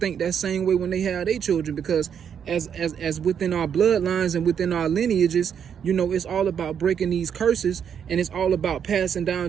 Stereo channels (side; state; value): left; quieter; 7.9 dB